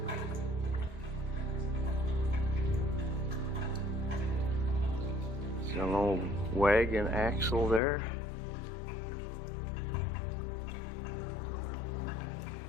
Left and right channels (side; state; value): right; drops out; at 7.8 s